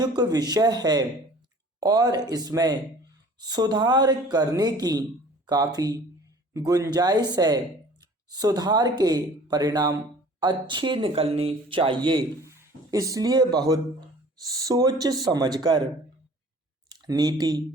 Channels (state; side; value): normal; both; correlation 0.48